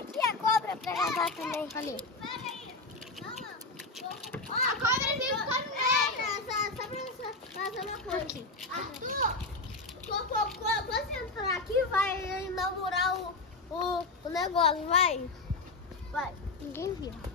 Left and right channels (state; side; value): quieter; right; 3.3 dB